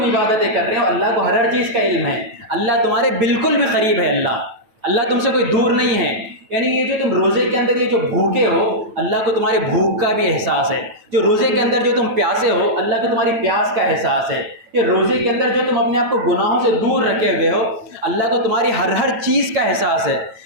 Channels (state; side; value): late; left; 9.1 ms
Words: इबादतें कर रहे हो अल्लाह को हर चीज़ का इल्म है। अल्लाह तुम्हारे बिल्कुल भी करीब है। अल्लाह तुमसे कोई दूर नहीं है। यानी ये जो तुम रोज़े के अंदर ये जो भूखे हो अल्लाह को तुम्हारे भूख का भी एहसास है। जो रोज़े के अंदर जो तुम प्यासे हो अल्लाह को तुम्हारी प्यास का एहसास है। ये रोज़े के अंदर जो तुम अपने आप को गुनाहों से दूर रखे हुए हो अल्लाह को तुम्हारी हर चीज़ का एहसास है।